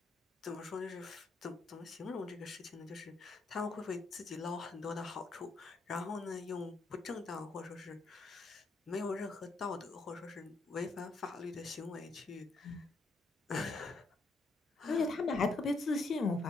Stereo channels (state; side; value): quieter; right; 3.4 dB